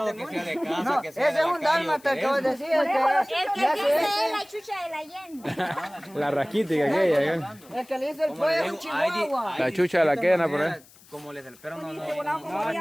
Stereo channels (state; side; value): noise; left; hiss, 25 dB below the sound